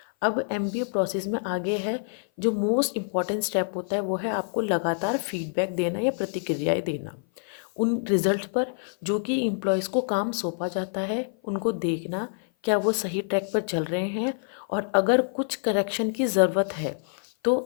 अब MBA process में आगे है जो most important step होता है वो है आपको लगातार फीडबैक देना या प्रतिक्रियाएं देना उन रिजल्ट पर जो कि एम्प्लॉयज़ को काम सौंपा जाता है, उनको देखना क्या वो सही ट्रैक पर चल रहे हैं और अगर कुछ करेक्शन की ज़रूरत है तो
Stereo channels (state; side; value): silent; right; 56 dB below the other